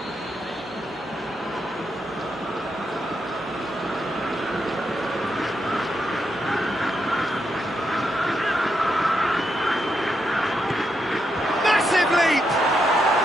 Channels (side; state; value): both; normal; correlation 0.81